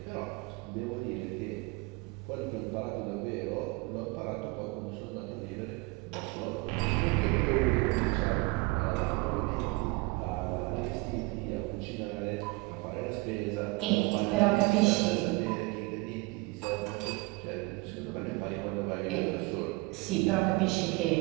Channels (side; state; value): left; quieter; 25.5 dB